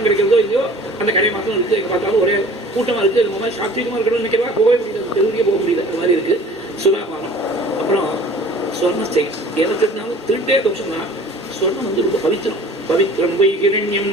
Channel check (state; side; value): normal; both; correlation 0.46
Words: கிடைக்கிறதோ இல்லையோ அந்த கடை மாத்திரம் இருக்குது. எங்கே பார்த்தாலும் ஒரே கூட்டமாக இருக்குது. அது மாதிரி சாத்வீகமாக இருக்கணும்னு நினைக்கிறதா போகவே முடியாது, தெருவிலேயே போக முடியாது. அது மாதிரி இருக்குது சுறாபானம். அப்புறம் ஸ்வர்ணஸ்தேயம், எதை திருட்டினாலும் திருட்டே தோஷம் தான். ஸ்வர்ணம் வந்து ரொம்ப பவித்திரம். பவித்திரம் போய் கிரண்யம்